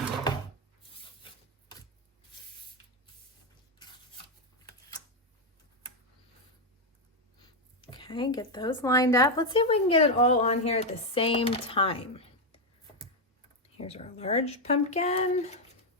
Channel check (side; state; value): both; normal; correlation 0.04